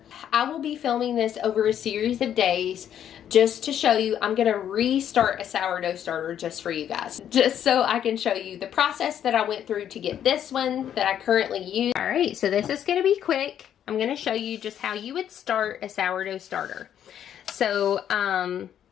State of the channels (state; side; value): quieter; right; 9.9 dB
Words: I will be filming this over a series of days just to show you. I'm going to restart a sourdough starter just for you guys, just so I can show you the process that I went through to get this one that I currently use. All right, so this is going to be quick. I'm going to show you just how you would start a sourdough starter. So